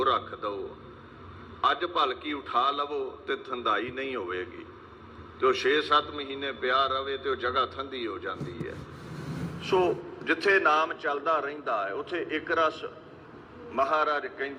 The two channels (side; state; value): both; identical; correlation 1.00